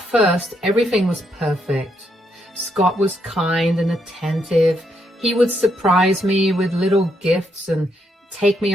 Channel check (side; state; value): both; normal; correlation 0.77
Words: everything was perfect. Scott was kind and attentive. He would surprise me with little gifts and take me